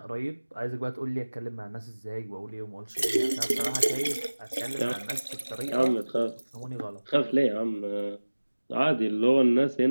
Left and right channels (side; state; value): both; inverted; correlation -1.00